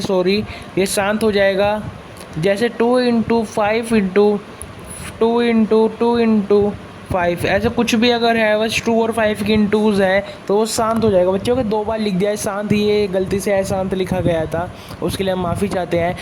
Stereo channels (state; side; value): identical; both; correlation 1.00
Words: ये शांत हो जाएगा। जैसे 2 × 5 ऐसे कुछ भी अगर है, बस 2 और 5 की इंटूज है तो वो शांत हो जाएगा बच्चों के। 2 बार लिख दिया है शांत, ये गलती से अशांत लिखा गया था, उसके लिए हम माफ़ी चाहते हैं।